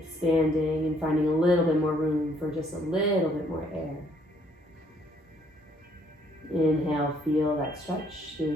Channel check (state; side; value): normal; both; correlation 0.65